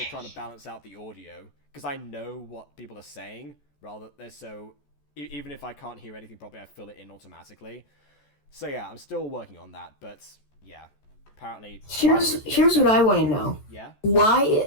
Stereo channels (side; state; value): right; late; 14 ms